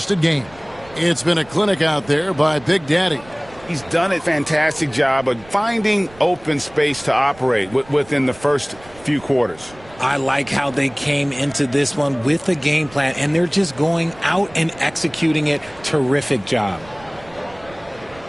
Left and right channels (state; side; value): noise; right; rumble, 23 dB below the sound